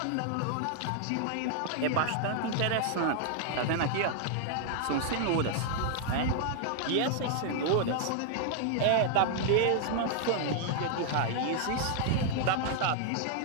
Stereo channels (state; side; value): different; both; correlation 0.00